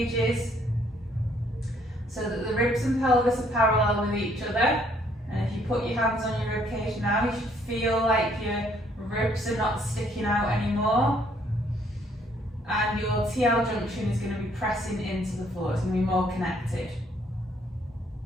so that the ribs and pelvis are parallel with each other. And if you put your hands on your rib cage now, you should feel like your ribs are not sticking out anymore. And your TL junction is going to be pressing into the floor. It's going to be more connected.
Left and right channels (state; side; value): normal; both; correlation 0.66